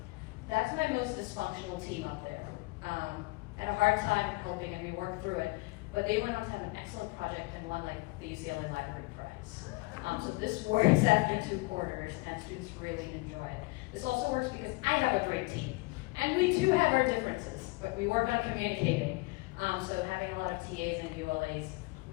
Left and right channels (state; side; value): quieter; right; 24.2 dB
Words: That's my most dysfunctional team up there. I had a hard time helping, and we worked through it, but they went on to have an excellent project and won like the UCLA Library Prize. So this works after 2 quarters, and students really enjoy it. This also works because I have a great team. And we too have our differences, but we work on communicating. So having a lot of TAs and ULAs